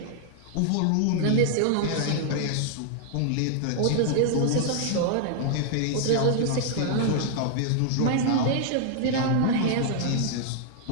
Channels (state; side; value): different; both; correlation 0.00